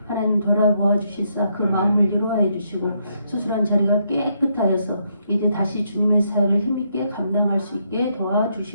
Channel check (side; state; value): both; inverted; correlation -0.76